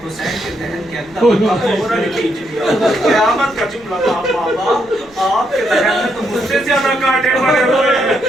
حسین کے دہن کے اندر فوراً کھینچ لیا. قیامت کا جملہ تھا بابا آپ کے دہن میں تو مجھ سے زیادہ کانٹے پڑے ہوئے ہیں.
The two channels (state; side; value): noise; left; rumble, 29 dB below the sound